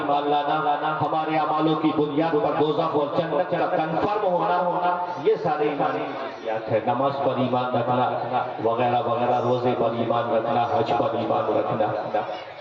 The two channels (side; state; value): both; identical; correlation 1.00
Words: لانا، ہمارے اعمالوں کی بنیاد پر دوزخ اور جنت کا کنفرم ہونا، یہ سارے ایمانی جزیات ہیں. نماز پر ایمان رکھنا وغیرہ وغیرہ، روزے پر ایمان رکھنا، حج پر ایمان رکھنا.